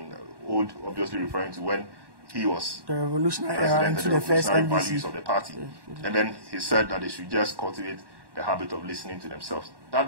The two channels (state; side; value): late; left; 1.1 ms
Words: old obviously referring to when he was the revolutionary era into the first NDC values of the party. And then he said that they should just cultivate the habit of listening to themselves.